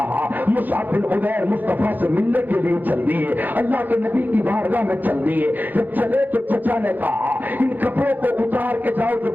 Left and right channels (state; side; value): late; left; 0.085 ms